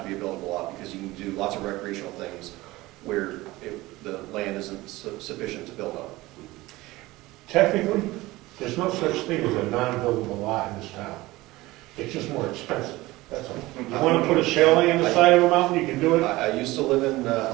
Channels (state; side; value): quieter; left; 19.3 dB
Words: to be a buildable lot, because you can do lots of recreational things where the land isn't sufficient to build on. Technically, there's no such thing as a non-buildable lot in this town. It's just more expensive, that's all. You want to put a chalet on the side of a mountain, you can do it. I used to live in